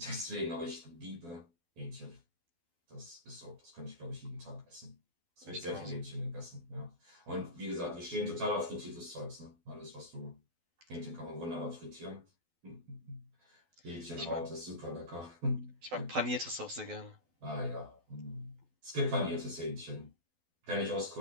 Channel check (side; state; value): left; late; 12 ms